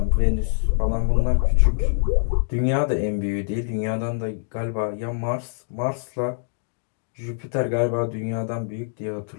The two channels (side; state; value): right; silent; digital silence